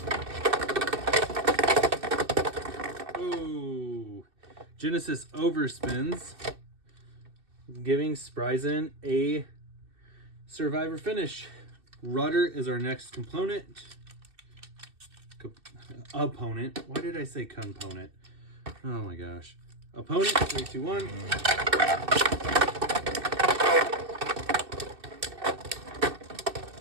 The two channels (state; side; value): late; left; 2.6 ms